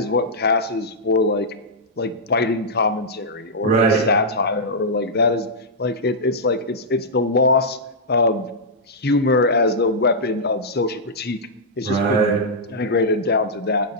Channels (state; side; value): normal; both; correlation -0.10